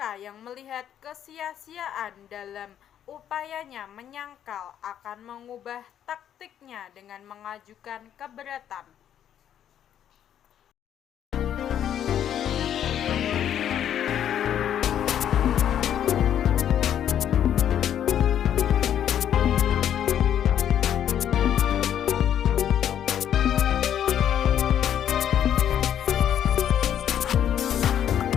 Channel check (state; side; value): quieter; right; 10.0 dB